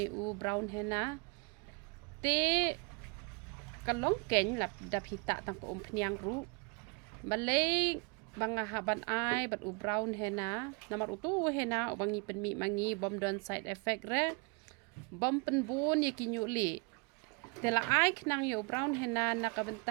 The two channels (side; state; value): left; quieter; 31.8 dB